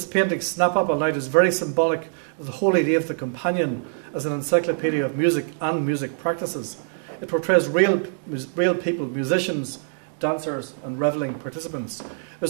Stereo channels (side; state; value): left; silent; digital silence